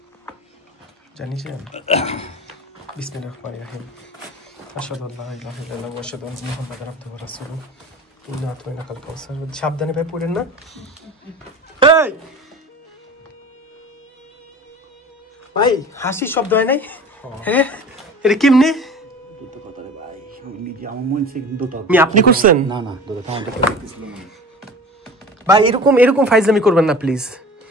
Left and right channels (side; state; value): both; normal; correlation 0.38